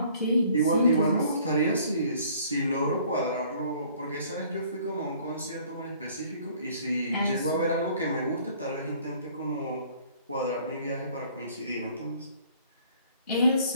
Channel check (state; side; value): inverted; both; correlation -0.56